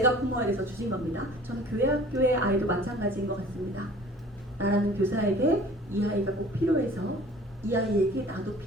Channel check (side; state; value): both; normal; correlation 0.48